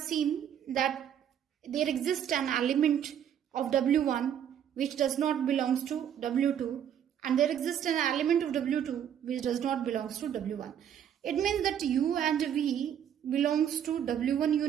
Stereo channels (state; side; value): quieter; left; 9.4 dB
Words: that there exists an element of W1 which does not belong to W2, and there exists an element of W2 which does not belong to W1. It means that U and V belongs to W1